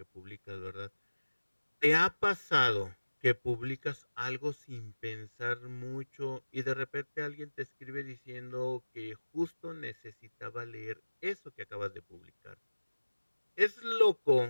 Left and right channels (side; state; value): both; inverted; correlation -1.00